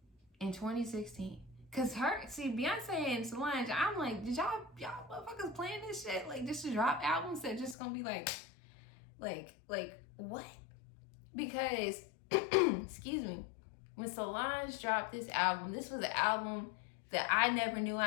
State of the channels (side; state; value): right; drops out; at 7.8 s